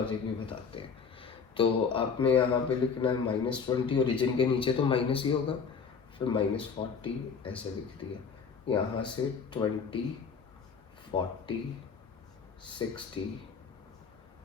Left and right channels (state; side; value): quieter; right; 5.9 dB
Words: भी बताते हैं। तो आपने यहाँ पे लिखना है -20, ओरिजिन के नीचे तो माइनस ही होगा। फिर -40 ऐसे लिख दिया, यहाँ से 20, 40, 60,